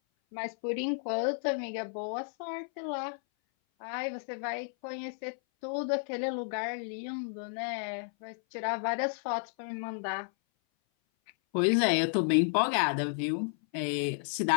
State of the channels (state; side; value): silent; right; 56 dB below the other